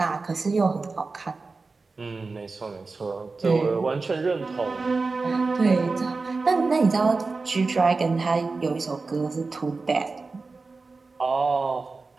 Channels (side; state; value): left; quieter; 4.0 dB